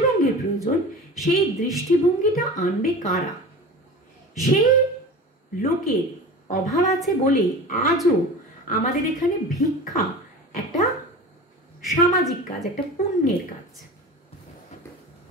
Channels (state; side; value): normal; both; correlation 0.34